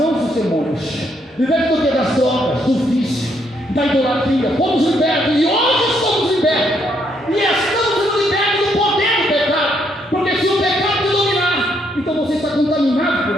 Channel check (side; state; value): both; normal; correlation 0.73